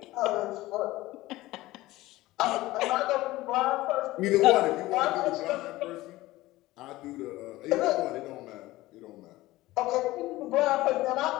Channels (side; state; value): right; quieter; 17.9 dB